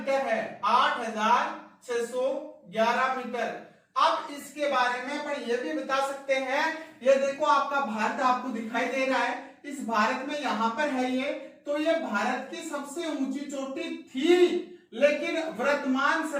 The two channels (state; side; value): identical; both; correlation 1.00